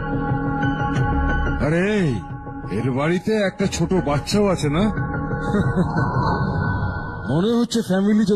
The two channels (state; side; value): identical; both; correlation 1.00